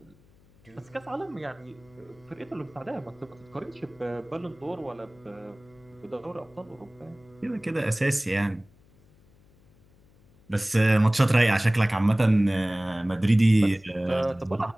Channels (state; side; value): noise; left; hum, 29 dB below the sound